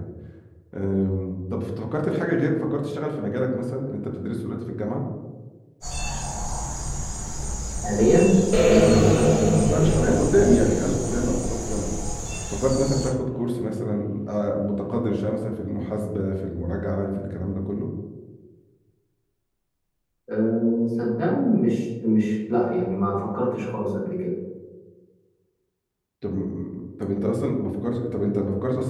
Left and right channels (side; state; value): both; identical; correlation 1.00